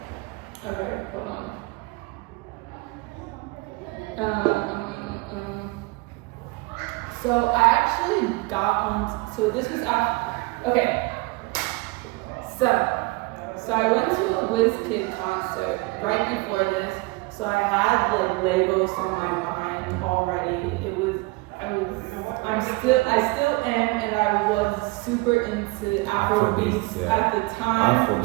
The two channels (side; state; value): left; quieter; 24.3 dB